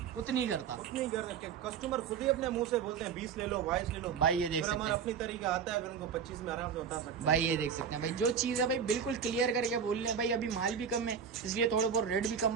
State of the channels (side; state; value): left; quieter; 7.1 dB